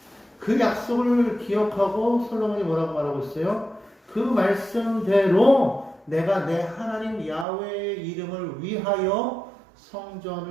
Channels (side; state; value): left; drops out; at 7.5 s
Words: 그 약속을 기억하고 솔로몬이 뭐라고 말하고 있어요? 그 말씀대로 내가 내 하나님 야훼의 이름을 위하여